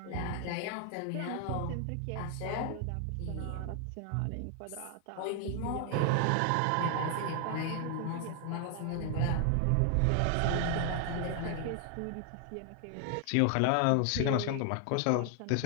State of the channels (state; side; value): different; both; correlation 0.00